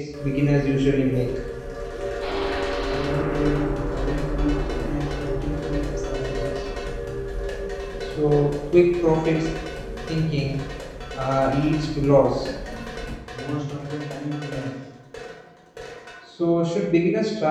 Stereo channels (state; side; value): identical; both; correlation 1.00